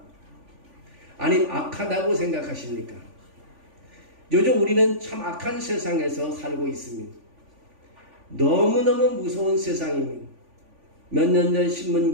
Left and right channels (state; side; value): late; left; 3.5 ms